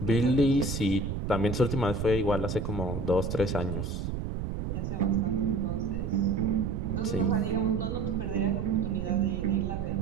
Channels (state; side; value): noise; right; rumble, 3 dB below the sound